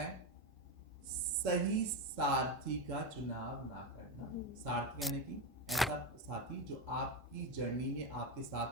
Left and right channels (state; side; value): normal; both; correlation 0.13